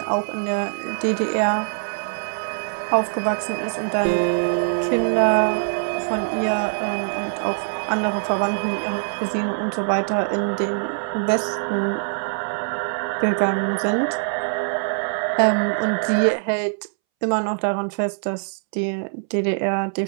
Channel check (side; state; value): left; silent; 63 dB below the other